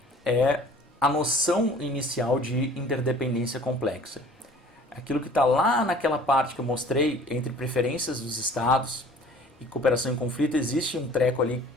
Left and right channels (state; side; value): normal; both; correlation 0.49